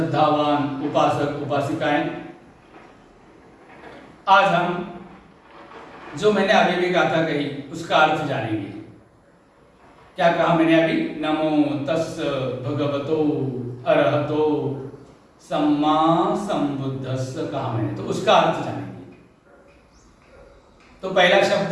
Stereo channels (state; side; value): identical; both; correlation 1.00